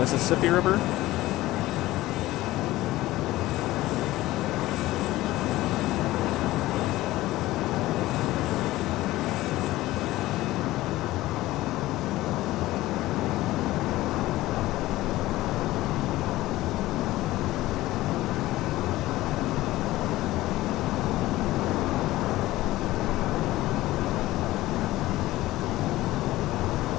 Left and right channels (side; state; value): right; quieter; 17.0 dB